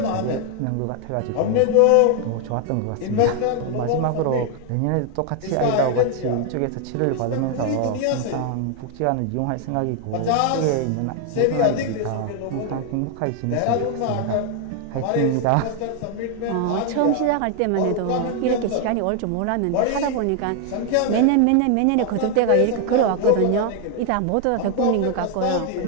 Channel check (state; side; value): different; both; correlation 0.00